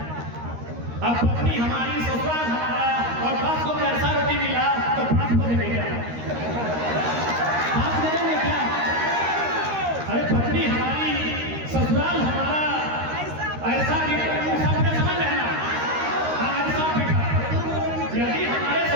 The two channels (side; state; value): left; late; 13 ms